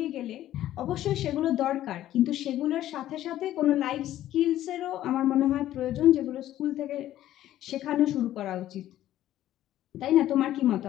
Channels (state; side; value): quieter; right; 13.1 dB